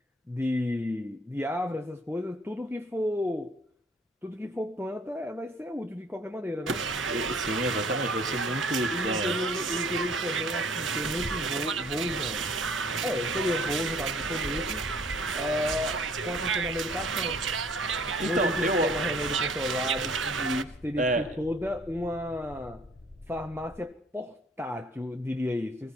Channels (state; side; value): normal; both; correlation 0.56